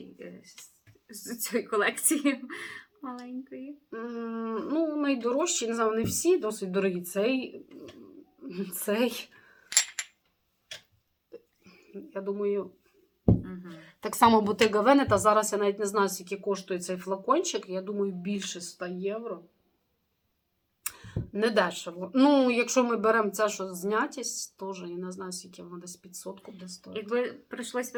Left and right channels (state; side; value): identical; both; correlation 1.00